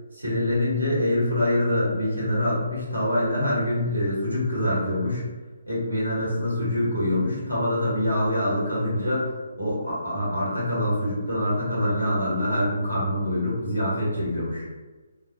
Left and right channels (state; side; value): inverted; both; correlation -0.74